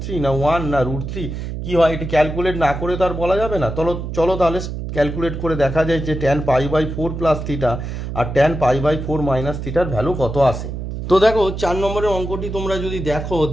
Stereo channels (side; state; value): right; noise; hum, 6 dB below the sound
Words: না 1 না √3 কি হয়, এটি ক্যালকুলেট না করে তো আর বলা যাবে না। চলো তাহলে ক্যালকুলেট করে দেখা যায় যে tan π/4 প্লাস থিটা আর tan π/4 মাইনাস থিটার ভ্যালু কত আসে। তো দেখো 4 নম্বরের অঙ্কটি তোমরা যদি দেখো,